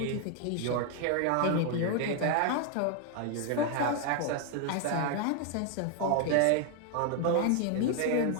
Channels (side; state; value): both; different; correlation 0.00